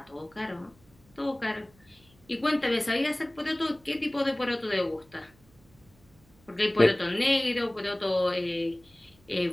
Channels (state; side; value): noise; right; hum, 29 dB below the sound